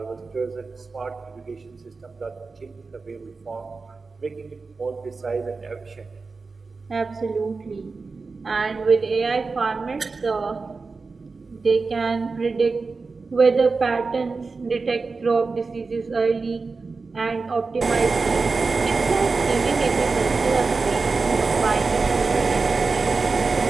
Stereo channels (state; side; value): quieter; left; 4.2 dB